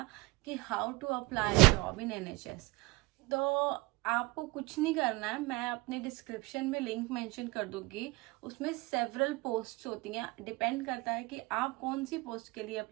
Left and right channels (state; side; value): quieter; left; 23.5 dB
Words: कि how to apply job in NHS. तो आपको कुछ नहीं करना है, मैं अपने डिस्क्रिप्शन में लिंक मेंशन कर दूंगी। उसमें सेवरल पोस्ट्स होती हैं, डिपेंड करता है कि आप कौन सी पोस्ट के लिए